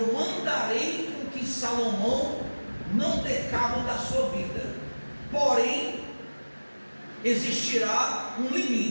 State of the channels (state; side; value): inverted; both; correlation -1.00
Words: mandarei com que Salomão não dê cabo da sua vida. Porém, existirá um